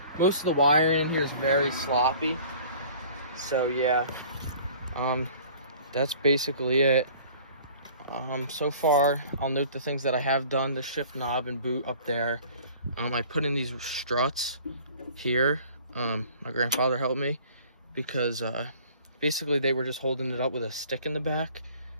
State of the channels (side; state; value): both; inverted; correlation -0.49